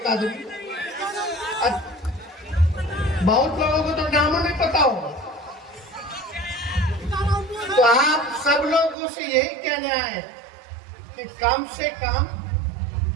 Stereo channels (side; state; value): left; drops out; at 9.0 s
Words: आदमी। बहुत लोगों को तो नाम नहीं पता होगा, तो आप सब लोगों से यही कहने आए कि कम से कम